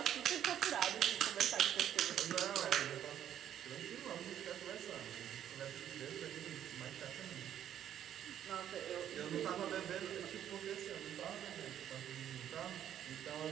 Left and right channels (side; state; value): left; quieter; 10.4 dB